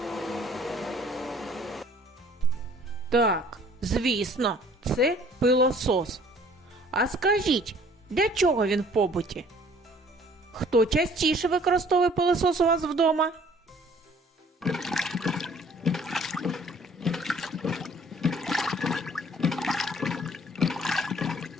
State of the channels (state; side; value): normal; both; correlation 0.55